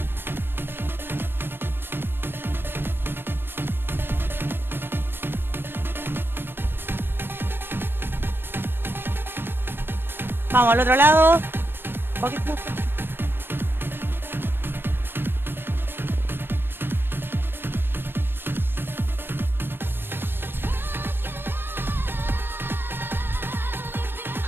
Vamos al otro lado.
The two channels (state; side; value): late; left; 0.099 ms